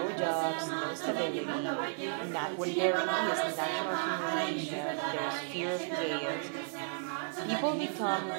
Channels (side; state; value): left; silent; digital silence